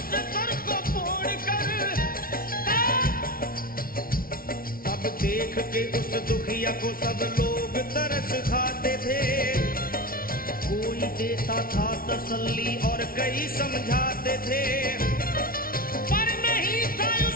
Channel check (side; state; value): right; late; 0.43 ms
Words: से सर को फोड़ कर। अब देख के उस दुखिया को सब लोग तरस खाते थे, कोई देता था तसल्ली और कई समझाते थे। पर नहीं था